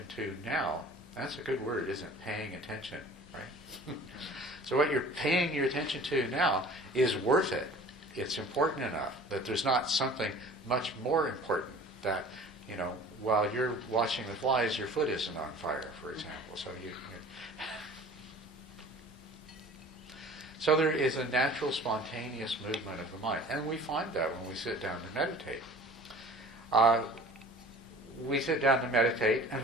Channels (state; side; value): normal; both; correlation 0.45